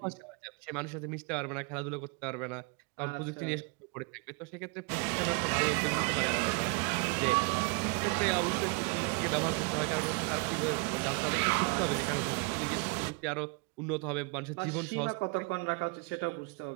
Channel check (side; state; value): left; quieter; 32.2 dB